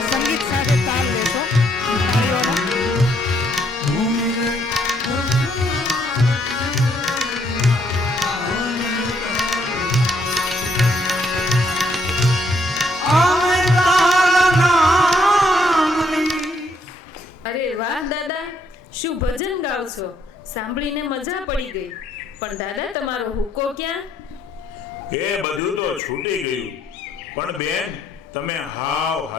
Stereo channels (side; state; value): both; normal; correlation 0.70